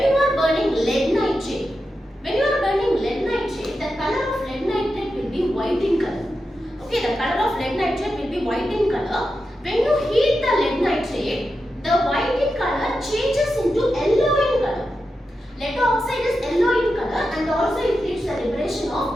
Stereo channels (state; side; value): normal; both; correlation 0.89